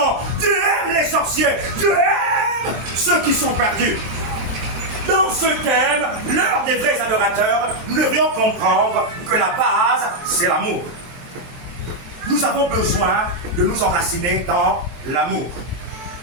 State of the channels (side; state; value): left; late; 24 ms